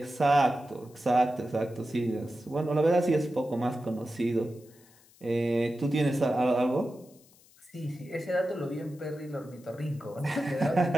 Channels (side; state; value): left; noise; hiss, 28 dB below the sound